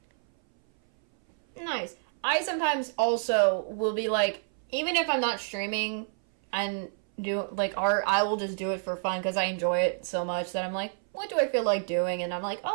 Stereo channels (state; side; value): silent; left; 58 dB below the other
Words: Nice. I sometimes also will be like, even if I'm not streaming and do like art, I will just do it for fun because I enjoy it so much that I'm like, what do I feel like doing? And I'm like,